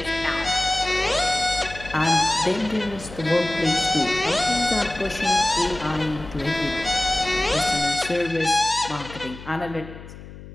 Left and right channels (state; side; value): noise; left; hum, 15 dB below the sound